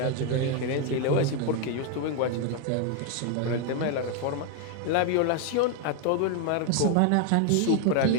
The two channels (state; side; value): different; both; correlation 0.01